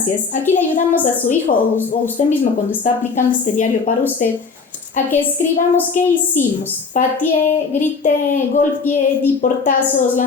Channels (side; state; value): right; quieter; 4.9 dB